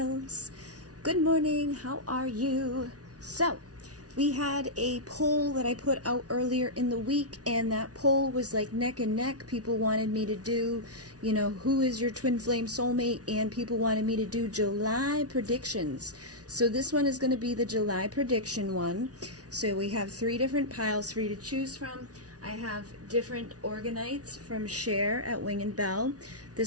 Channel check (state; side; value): late; left; 0.68 ms